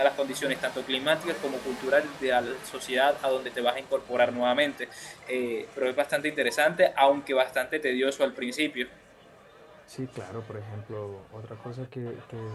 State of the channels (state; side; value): identical; both; correlation 1.00